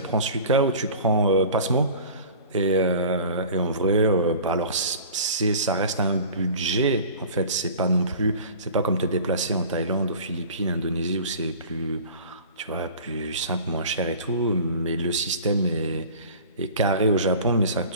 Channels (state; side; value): inverted; both; correlation -0.42